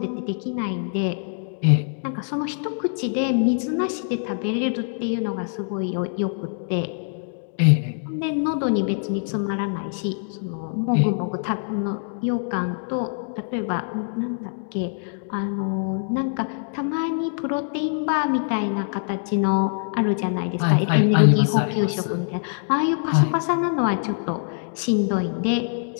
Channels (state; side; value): silent; right; 63 dB below the other